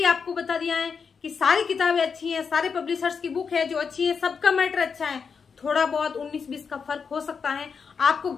आपको बता दिया है कि सारी किताबें अच्छी हैं, सारे पब्लिशर्स की बुक है जो अच्छी है, सबका मैटर अच्छा है। थोड़ा बहुत 19-20 का फर्क हो सकता है, आपको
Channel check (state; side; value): quieter; right; 5.9 dB